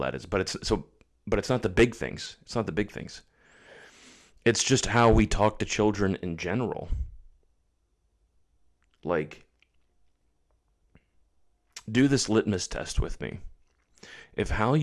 is. But it's not the big things. It's not the big things. It's just how we talk to children in general. Like, do this litmus test with me. If how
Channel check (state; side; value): identical; both; correlation 1.00